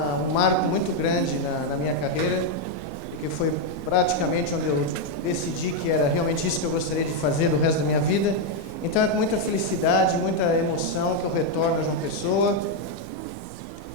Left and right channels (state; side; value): normal; both; correlation 0.01